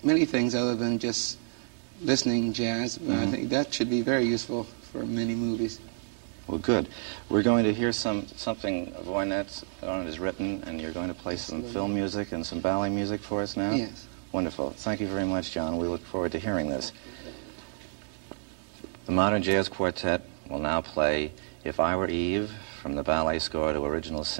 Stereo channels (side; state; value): left; silent; digital silence